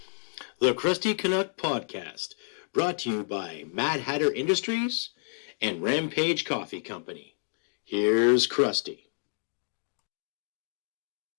The Crusty Canuck podcast, brought to you by Mad Hatter Industries and Rampage Coffee Company. Here's Crusty.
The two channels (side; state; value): right; silent; digital silence